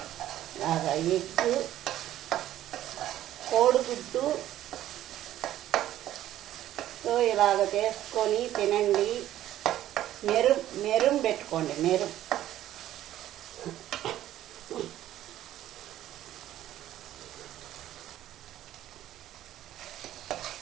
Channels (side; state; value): left; quieter; 13.0 dB